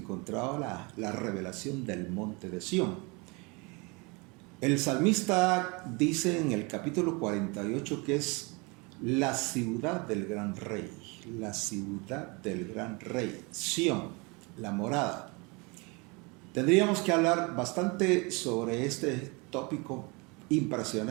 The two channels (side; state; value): left; quieter; 28.6 dB